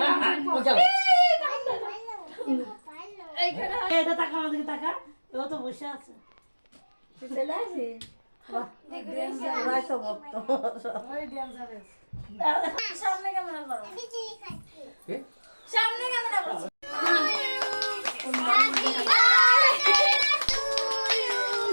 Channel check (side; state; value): both; inverted; correlation -1.00